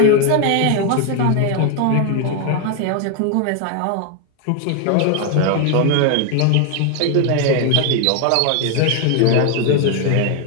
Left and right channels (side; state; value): both; different; correlation 0.01